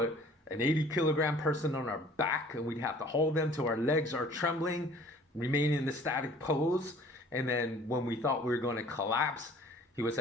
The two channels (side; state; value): both; normal; correlation 0.52